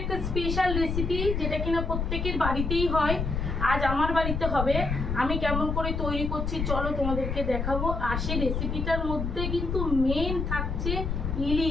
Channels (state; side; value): noise; left; rumble, 2 dB below the sound